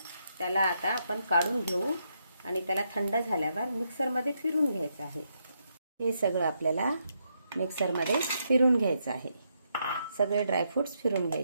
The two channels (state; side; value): inverted; both; correlation -0.79